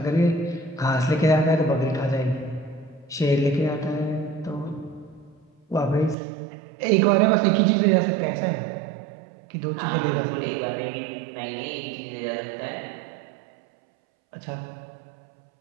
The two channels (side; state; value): left; drops out; at 6.2 s